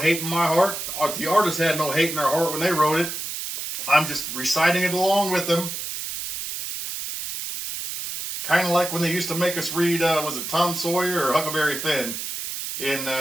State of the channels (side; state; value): right; noise; hiss, 6 dB below the sound